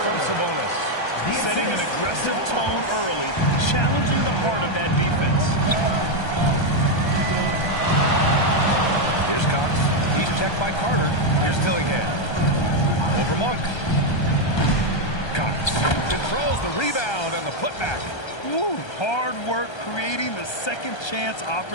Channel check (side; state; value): right; late; 1.3 ms